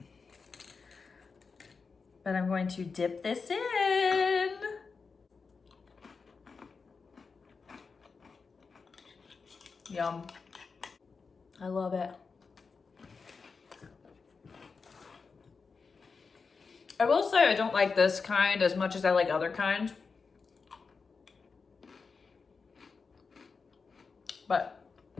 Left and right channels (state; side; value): quieter; right; 4.9 dB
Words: But I'm going to dip this in. Yum. I love it. I will say I don't like this kind as much as I like other kinds. But